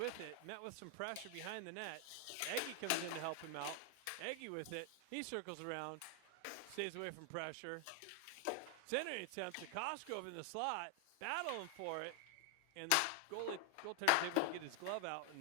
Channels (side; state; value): both; different; correlation 0.00